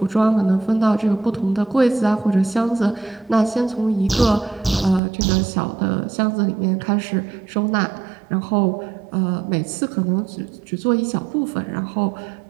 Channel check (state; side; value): drops out; left; at 5.0 s